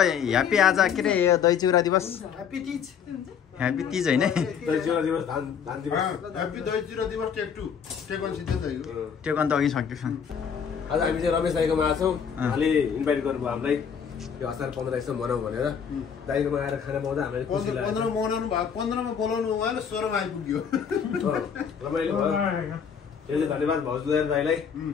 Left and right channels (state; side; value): quieter; right; 7.3 dB